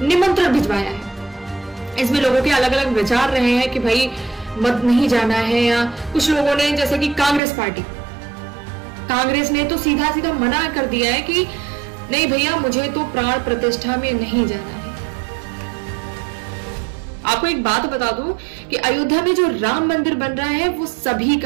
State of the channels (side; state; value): left; drops out; at 7.4 s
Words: निमंत्रण भिजवाया है। इसमें लोगों के अलग अलग विचार रहे हैं कि भाई मत नहीं जाना है, या कुछ लोगों ने जैसे कि कांग्रेस ने तो सीधा सीधा मना कर दिया है कि नहीं भैया, मुझे तो प्राण प्रतिष्ठा में नहीं जाना है। आपको एक बात बता दूं कि अयोध्या में जो राम मंदिर बन रहा है वो सभी